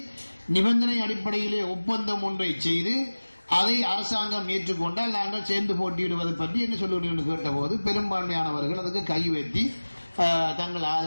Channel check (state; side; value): inverted; both; correlation -1.00